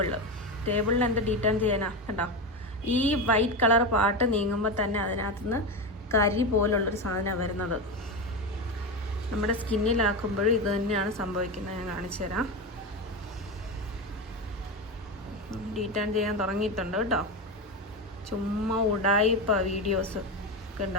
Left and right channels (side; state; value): both; normal; correlation 0.17